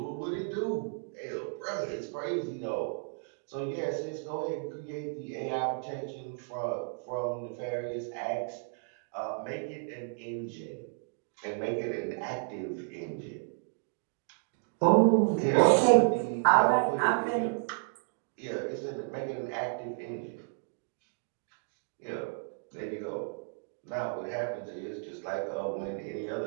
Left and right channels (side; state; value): left; silent; 56 dB below the other